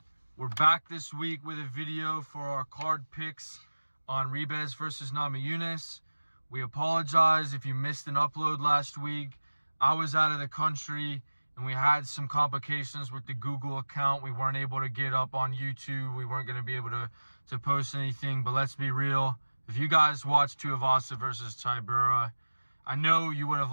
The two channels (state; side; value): inverted; both; correlation -1.00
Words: we're back this week with a video for our card picks on Ribas versus Namajunas. We apologize if you missed an upload last week. I was out of the country and we had some complications with the Google account. We weren't able to get up on YouTube. We weren't going to be able to post anything, but let's be real. If you guys watched Tuivasa versus Tybura, I know you would have